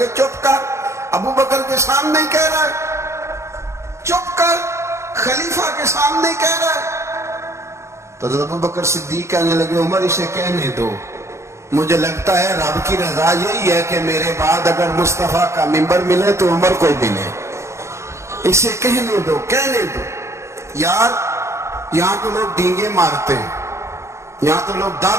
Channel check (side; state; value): left; late; 0.14 ms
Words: چپ کر، ابو بکر کے سامنے ہی کہہ رہا ہے، چپ کر، خلیفہ کے سامنے ہی کہہ رہا ہے. تو ابو بکر صدیق کہنے لگے عمر اسے کہنے دو، مجھے لگتا ہے رب کی رضا یہی ہے کہ میرے بعد اگر مصطفیٰ کا منبر ملے تو عمر کو ملے. اسے کہنے دو. یار یہاں تو لوگ ڈینگے مارتے ہیں, یہاں تو لوگ